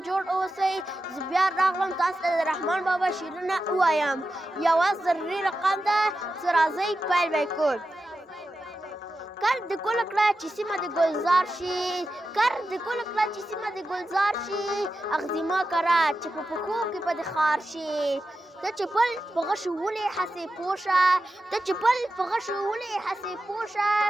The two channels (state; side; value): normal; both; correlation 0.91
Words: جوړ اوسئ. زه بیا راغلم تاسو ته د رحمان بابا شعرونه ووایم. یوه ضروري رقم ده چې راځئ پیل به یې کړو. کر د ګل کړه چې سیمه د ګلزار شي، کر د ګل کړه چې سیمه د ګلزار شي، اغزي مه کره چې په پښو کې به د خار شي. ته چې پل په غشو ولې هسې پوه شه، ته چې پل په غشو ولې هسې پوه شه،